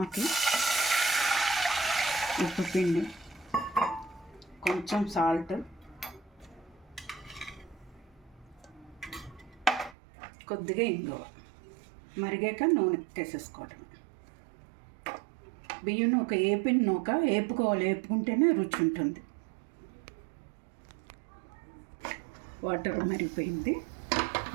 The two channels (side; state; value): left; drops out; at 10.0 s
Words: ఉప్పు పిండి, కొంచెం సాల్ట్, కొద్దిగా ఇంగువ, మరిగాక నూనె వేసేసుకోవటం. బియ్యం నూక ఏపిన నూక వేపుకోవాలి, వేపుకుంటేనే రుచి ఉంటుంది. వాటర్ మరిగిపోయింది,